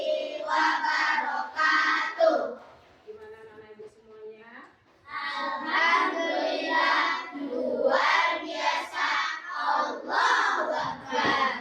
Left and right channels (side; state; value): both; identical; correlation 1.00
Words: wabarakatuh. Gimana anak ibu semuanya? Alhamdulillah, luar biasa. Allahu